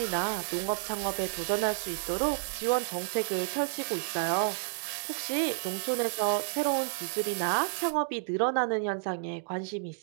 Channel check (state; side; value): silent; left; digital silence